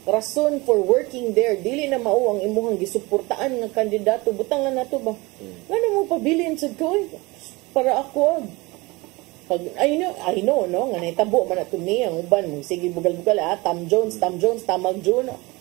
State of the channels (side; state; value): left; quieter; 23.7 dB